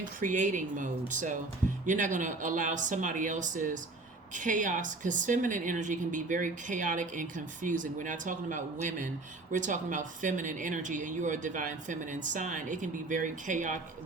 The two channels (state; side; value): quieter; left; 3.2 dB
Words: creating mode. So you're not going to allow somebody else's chaos, because feminine energy can be very chaotic and confusing. We're not talking about women, we're talking about feminine energy, and you are a divine feminine sign. It can be very